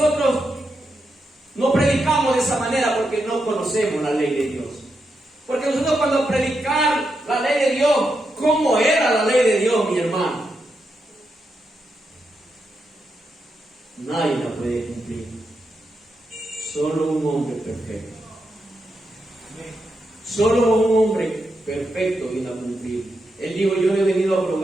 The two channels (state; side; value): normal; both; correlation 0.85